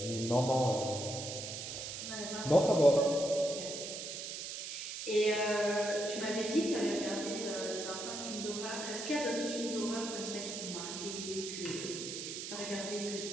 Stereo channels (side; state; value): right; noise; hiss, 6 dB below the sound